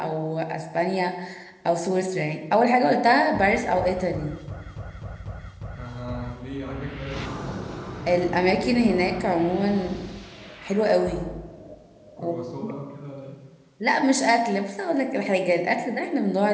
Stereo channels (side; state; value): both; identical; correlation 1.00